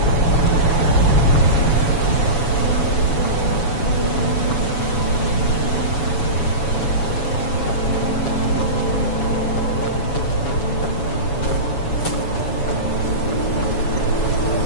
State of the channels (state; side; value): late; right; 7.1 ms